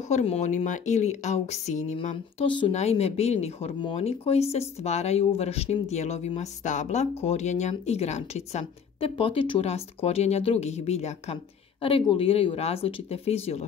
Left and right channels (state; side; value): quieter; right; 6.8 dB